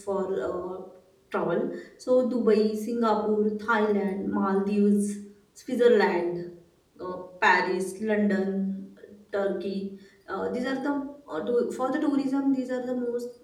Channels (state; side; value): identical; both; correlation 1.00